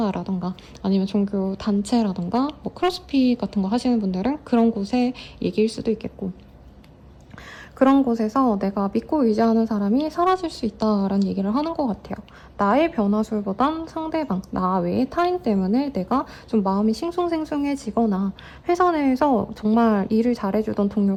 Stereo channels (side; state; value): both; identical; correlation 1.00